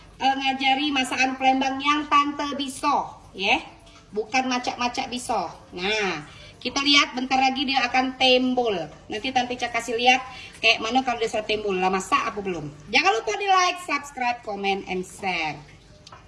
ngajari masakan Palembang yang Tante bisa ya, bukan macak-macak bisa. Nah, kita lihat bentar lagi dia akan tembol. Nanti Tante Ica kasih lihat kayak mana kalau dia sudah tembol. Lah masak apa belum? Jangan lupa di like, subscribe, comment, and share.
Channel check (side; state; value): both; identical; correlation 1.00